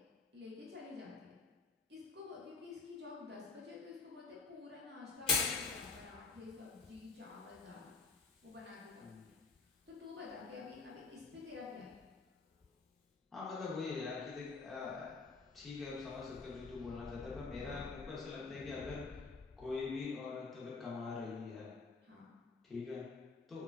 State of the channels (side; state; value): right; quieter; 4.3 dB